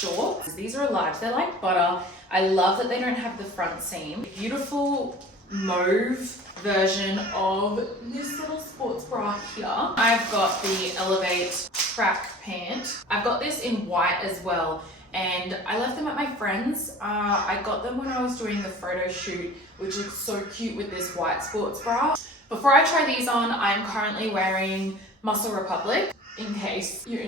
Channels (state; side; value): normal; both; correlation 0.43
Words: These are large, they're like butter. I love that they don't have the front seam. Beautiful mauve version of this little sports bra here. I've got the Elevate track pant. I've got this in white as well, and I left them at my friend's. I got them when I was doing the photo shoot, which looks so cute with this white sports bra. Before I try these on, I'm currently wearing Muscle Republic, in case you're